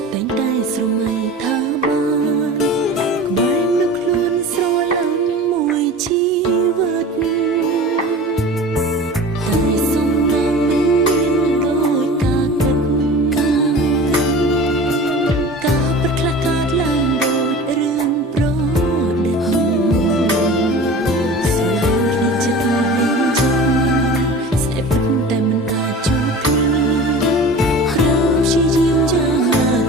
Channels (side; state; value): both; normal; correlation 0.37